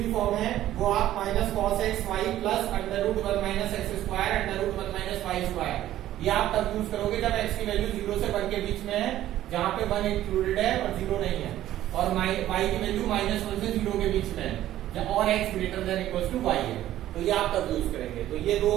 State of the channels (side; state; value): left; quieter; 13.3 dB